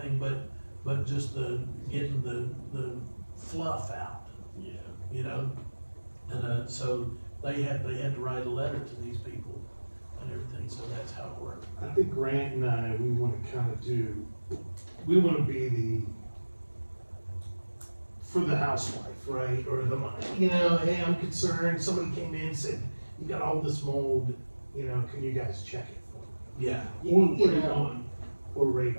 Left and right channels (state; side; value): inverted; both; correlation -1.00